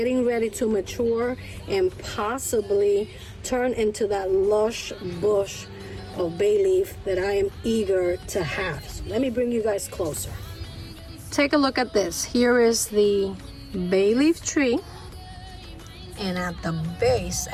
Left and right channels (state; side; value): identical; both; correlation 1.00